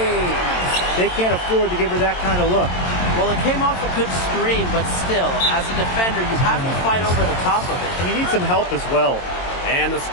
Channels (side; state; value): right; late; 22 ms